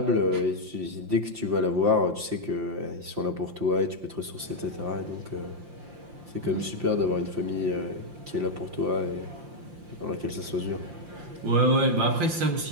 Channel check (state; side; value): late; left; 5.8 ms